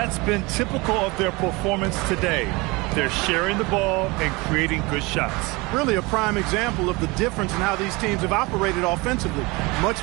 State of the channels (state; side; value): quieter; left; 24.8 dB